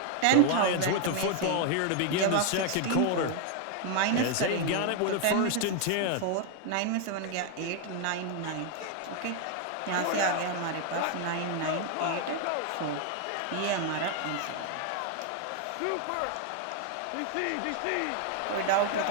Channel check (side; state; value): both; different; correlation 0.01